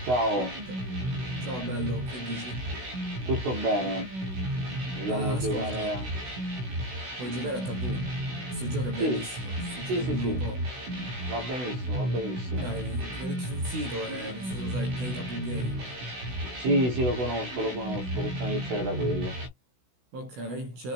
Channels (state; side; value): late; left; 16 ms